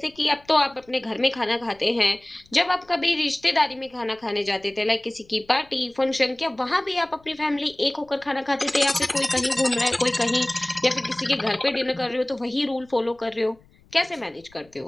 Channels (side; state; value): left; noise; rumble, 29 dB below the sound